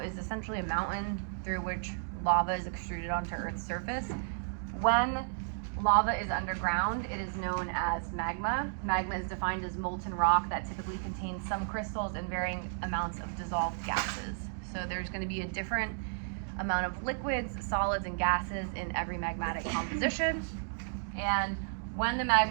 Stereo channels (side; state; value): left; silent; digital silence